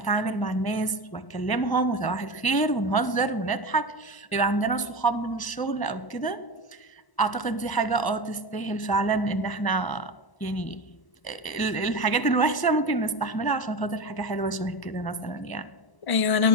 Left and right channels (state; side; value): late; right; 1.0 ms